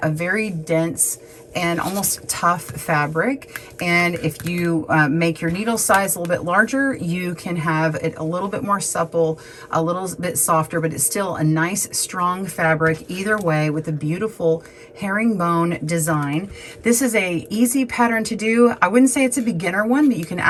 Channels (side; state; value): both; identical; correlation 1.00